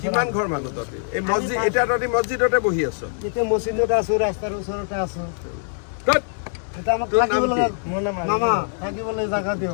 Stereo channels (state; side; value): silent; right; digital silence